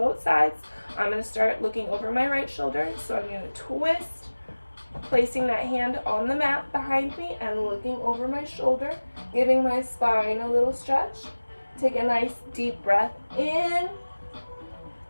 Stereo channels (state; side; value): inverted; both; correlation -1.00